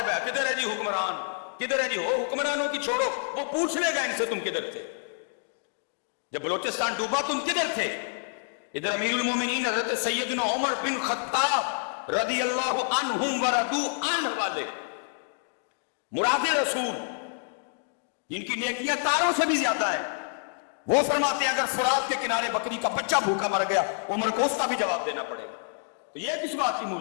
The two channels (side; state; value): right; silent; digital silence